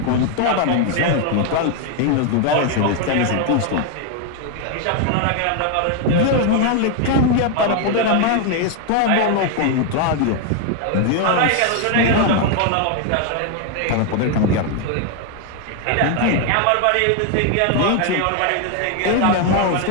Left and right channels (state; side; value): different; both; correlation 0.01